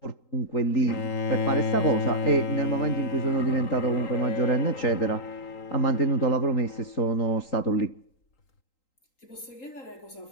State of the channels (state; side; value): late; right; 3.8 ms